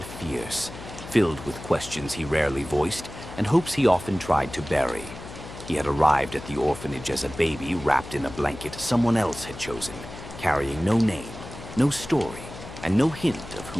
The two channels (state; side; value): noise; left; hum, 13 dB below the sound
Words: fierce, filled with questions he rarely voiced and hopes he often tried to bury. He had arrived at the orphanage as a baby wrapped in a blanket someone else had chosen, carrying no name, no story, and no hint of